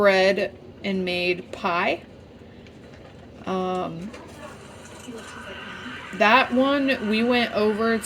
and made pie. That one, we went over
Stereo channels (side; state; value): both; identical; correlation 1.00